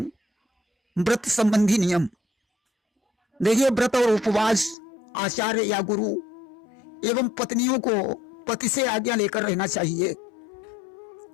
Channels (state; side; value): drops out; right; at 4.8 s